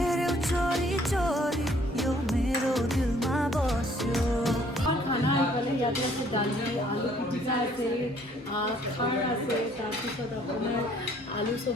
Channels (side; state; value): both; normal; correlation 0.61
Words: ইয়াতে আছে দালি আলু পিটিকা আছে খাৰ আছে তাৰপিছত আপোনাৰ আলু